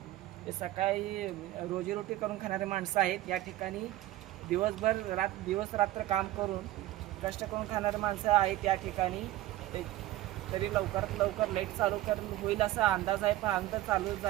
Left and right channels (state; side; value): quieter; left; 15.4 dB